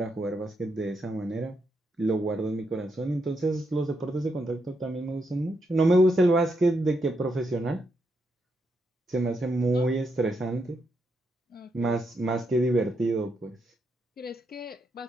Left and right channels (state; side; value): normal; both; correlation 0.81